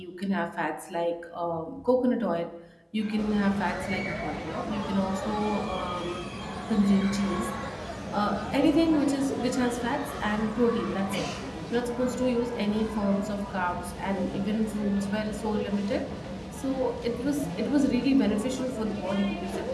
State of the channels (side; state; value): both; identical; correlation 1.00